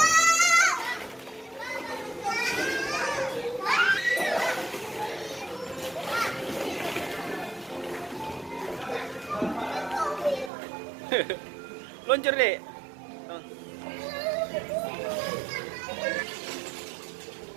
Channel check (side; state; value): left; drops out; at 10.5 s